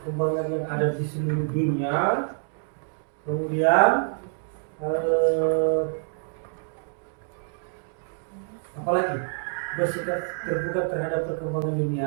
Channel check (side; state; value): left; silent; 60 dB below the other